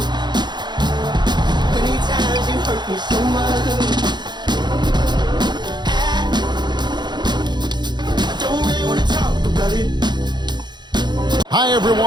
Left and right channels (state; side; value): late; left; 0.21 ms